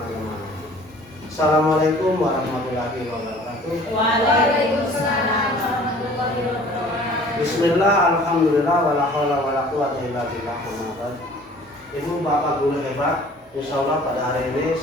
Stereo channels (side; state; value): both; normal; correlation 0.50